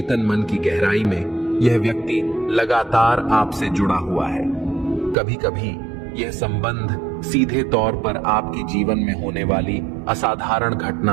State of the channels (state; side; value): drops out; left; at 5.2 s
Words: मन की गहराई में यह व्यक्ति लगातार आपसे जुड़ा हुआ है। कभी कभी यह संबंध सीधे तौर पर आपके जीवन में होने वाली असाधारण